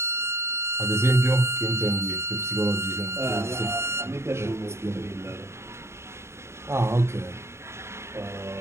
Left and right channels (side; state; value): left; late; 0.13 ms